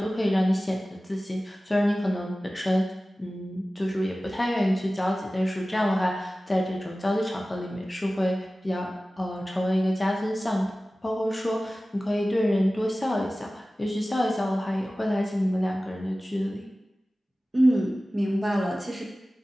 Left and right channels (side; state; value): both; normal; correlation 0.96